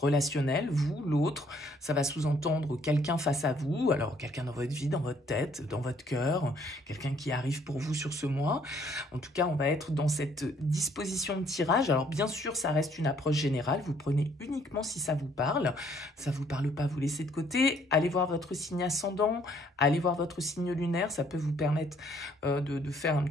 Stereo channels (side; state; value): both; normal; correlation 0.63